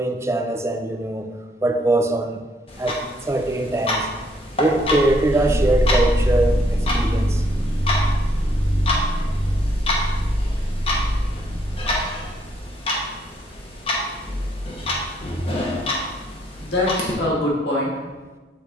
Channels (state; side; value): normal; both; correlation 0.69